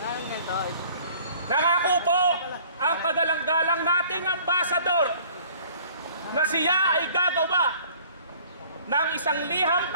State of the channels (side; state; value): both; inverted; correlation -0.53